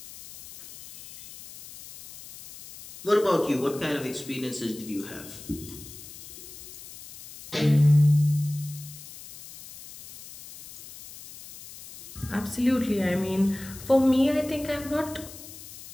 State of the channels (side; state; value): left; noise; hiss, 16 dB below the sound